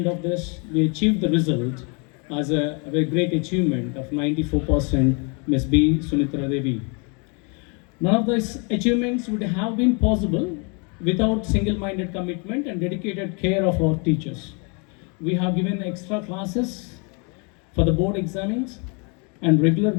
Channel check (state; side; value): quieter; right; 34.4 dB